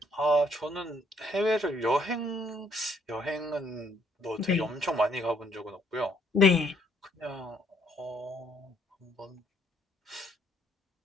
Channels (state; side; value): normal; both; correlation 0.68